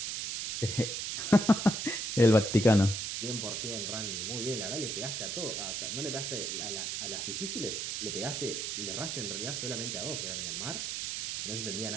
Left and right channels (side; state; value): right; noise; hiss, 3 dB below the sound